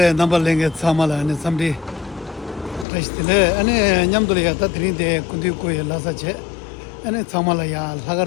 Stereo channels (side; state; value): right; drops out; at 2.9 s